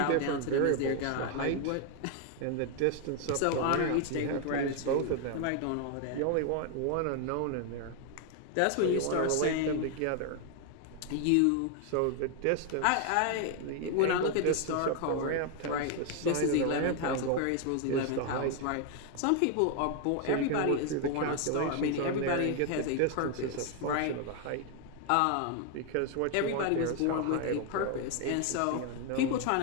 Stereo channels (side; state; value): both; different; correlation 0.01